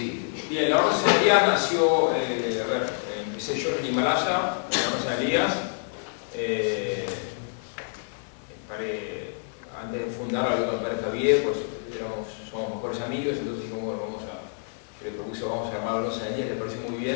Bien, la Orden San Elías nació, empecé yo en Himalaya, la Orden San Elías. Antes de fundar hablé con el padre Javier, pues somos mejores amigos, entonces dijimos, bueno, yo le propuse, vamos a armar la Orden San Elías, le pareció muy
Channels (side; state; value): right; silent; digital silence